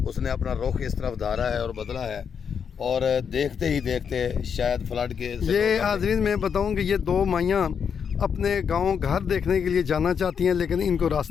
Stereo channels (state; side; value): quieter; right; 7.0 dB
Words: उसने अपना रुख इस तरफ धारा है और बदला है। और देखते ही देखते शायद फ्लड के ये हाज़रीन मैं बताऊं कि ये दो माइयाँ अपने गांव घर देखने के लिए जाना चाहती हैं, लेकिन इनको